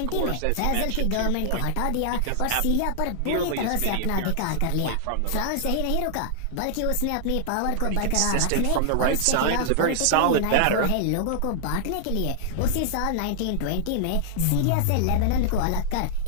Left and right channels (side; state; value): both; different; correlation -0.01